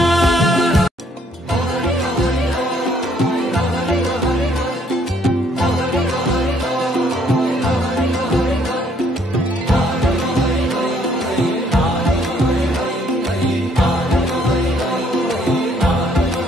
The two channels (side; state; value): both; normal; correlation 0.65